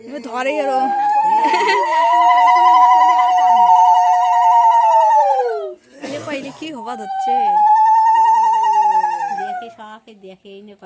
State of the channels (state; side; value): identical; both; correlation 1.00